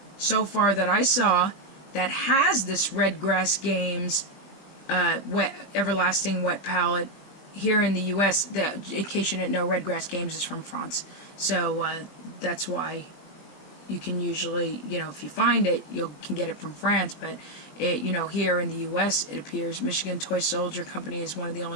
so far that I saw that has this Red Grass Games Everlasting Wet Palette here in the U.S. In case you didn't know, Red Grass Games is from France. So that's why you can usually, if you find it, you can get it from France. But, here in the U.S., it appears Michigan Toy Soldier Company is one of the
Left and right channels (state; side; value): late; right; 20 ms